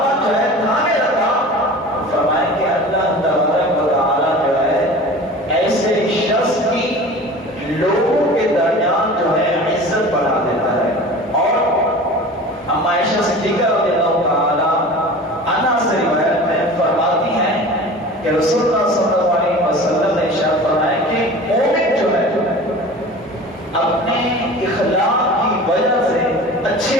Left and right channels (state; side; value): normal; both; correlation 0.38